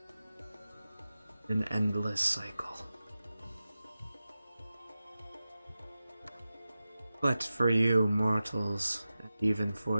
An endless cycle. But for you mortals, and even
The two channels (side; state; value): both; inverted; correlation -0.94